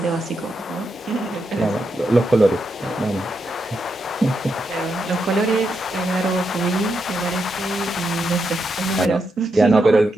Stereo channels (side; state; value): both; normal; correlation 0.83